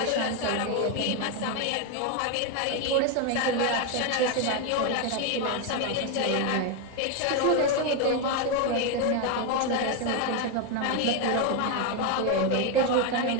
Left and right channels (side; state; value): both; different; correlation 0.02